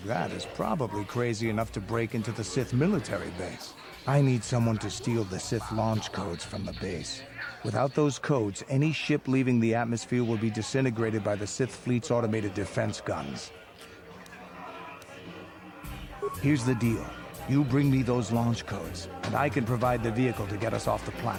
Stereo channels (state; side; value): identical; both; correlation 1.00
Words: that is probably crazy enough to break into the Sith military base. I need someone to steal the Sith launch codes from the base. Without those codes, any ship leaving the atmosphere will be disintegrated by the Sith fleet's automated defense guns. Here's the deal. You bring me those launch codes, and I can provide the vehicle to get us off the